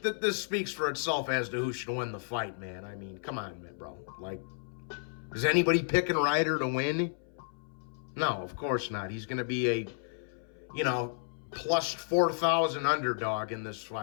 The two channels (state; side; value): silent; right; 56 dB below the other